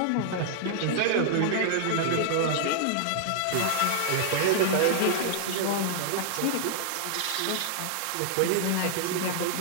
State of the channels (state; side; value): different; both; correlation -0.01